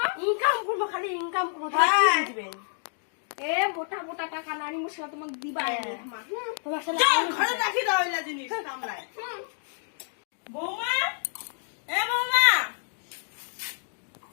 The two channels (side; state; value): right; silent; digital silence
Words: ইনকাম করবো খালি ইনকাম করবো দিবেন এ মোটা মোটা টাকা নানি মুসা তোমাকে দিবা তোমার সাথে ঘরে রাখি দাও এলা জিনিস কামলায় বৌমা এ বৌমা